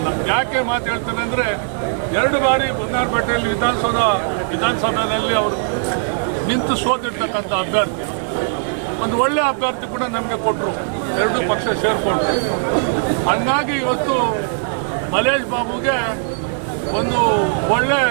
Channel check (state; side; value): silent; left; digital silence